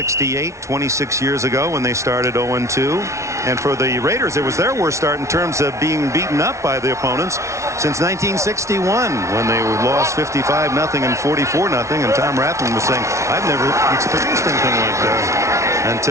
26 years ago when they started 0-2. And for the Raiders, it was their worst start in terms of being beaten up by the opponents since 1961, when they lost 55-0 and 44-0. And Tom Rathman was saying, I've never experienced anything like this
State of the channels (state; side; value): late; left; 0.14 ms